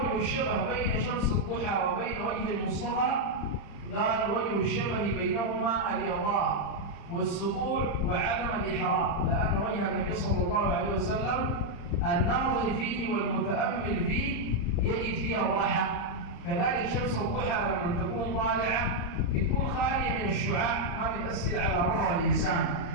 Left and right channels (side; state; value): right; late; 35 ms